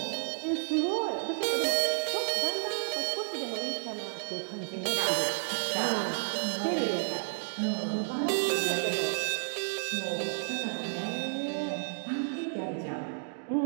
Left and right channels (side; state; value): left; silent; digital silence